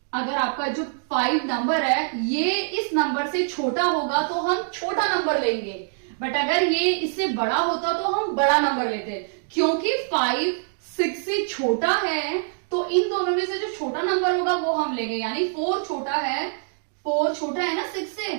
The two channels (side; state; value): left; silent; digital silence